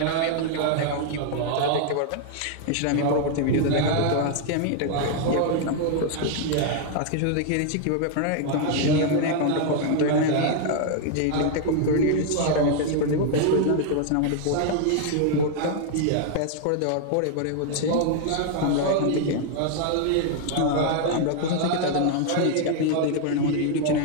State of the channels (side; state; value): both; different; correlation 0.00